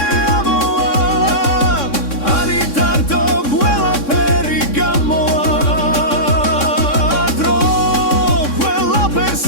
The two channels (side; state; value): right; late; 3.6 ms